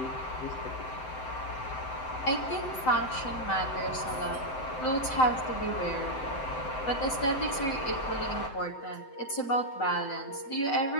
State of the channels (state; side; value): late; right; 7.8 ms